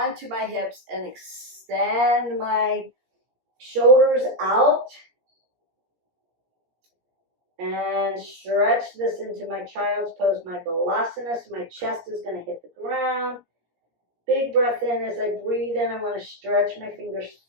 my hips and extend my shoulders out. And stretch this into my child's pose, my balasana. So my chest is going to hit the ground. Big breath in. As I breathe in, I want to stretch my fingers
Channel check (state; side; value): late; left; 17 ms